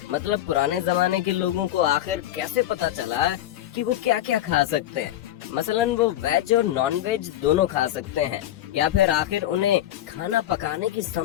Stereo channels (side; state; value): right; quieter; 13.0 dB